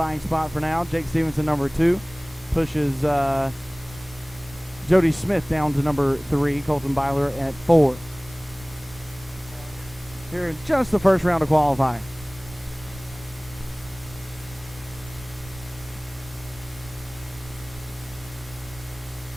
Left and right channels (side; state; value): right; noise; rumble, 20 dB below the sound